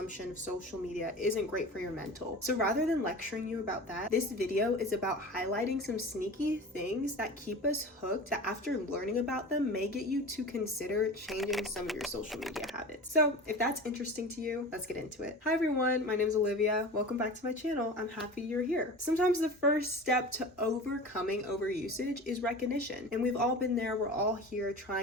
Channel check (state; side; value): normal; both; correlation 0.34